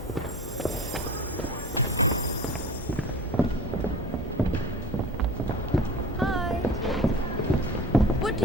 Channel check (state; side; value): normal; both; correlation 0.39